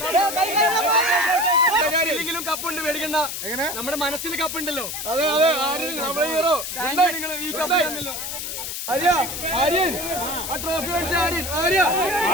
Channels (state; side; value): noise; left; hiss, 5 dB below the sound